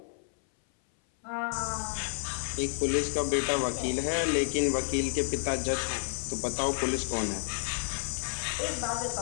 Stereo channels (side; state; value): right; silent; 57 dB below the other